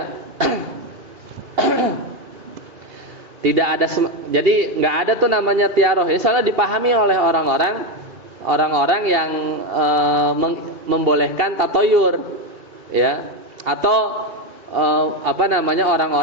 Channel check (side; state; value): left; late; 2.7 ms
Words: Tidak ada, jadi nggak ada tuh namanya tiaroh. Ini soalnya dipahami oleh orang-orang yang membolehkan tatoyur ya, atau